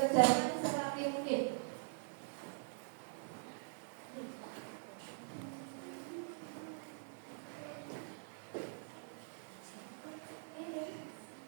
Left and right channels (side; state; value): left; silent; digital silence